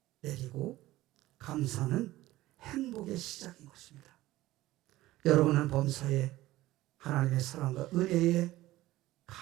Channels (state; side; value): quieter; left; 16.6 dB